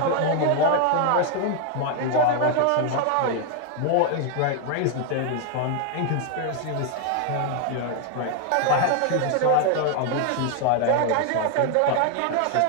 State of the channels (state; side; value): different; both; correlation 0.01